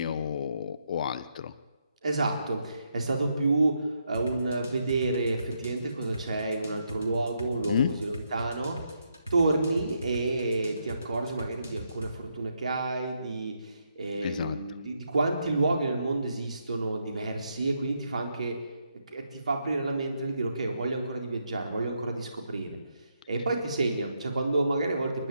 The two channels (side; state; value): both; inverted; correlation -0.79